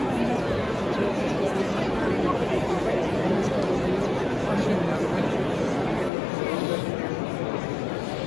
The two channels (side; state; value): right; drops out; at 6.1 s